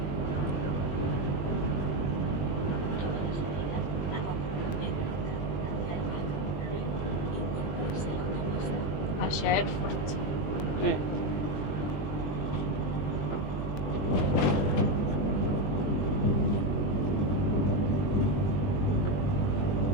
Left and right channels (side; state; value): right; late; 21 ms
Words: Hacia Erfurt. Sí.